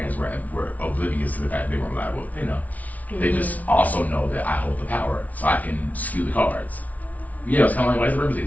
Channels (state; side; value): late; right; 0.072 ms